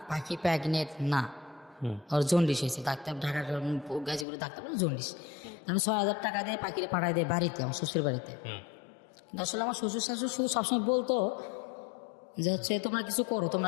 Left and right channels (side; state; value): right; drops out; at 4.2 s